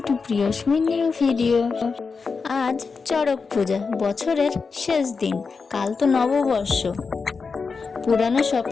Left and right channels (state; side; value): quieter; right; 4.9 dB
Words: to Priyasmi new video. আজ চড়ক পূজা, বছরের শেষ দিন। কাল তো নববর্ষ। পুরানো সব